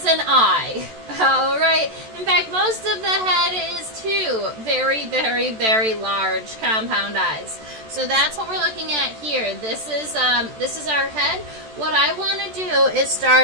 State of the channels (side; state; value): left; late; 14 ms